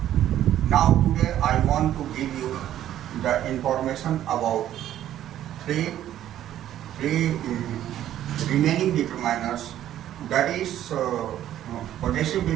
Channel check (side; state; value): left; quieter; 11.9 dB